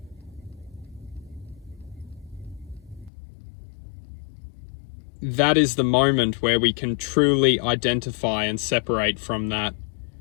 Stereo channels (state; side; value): drops out; right; at 3.1 s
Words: that is the moment where we can truly identify and separate from that